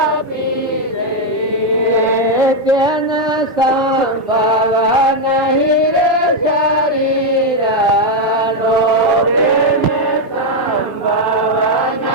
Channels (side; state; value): both; normal; correlation 0.02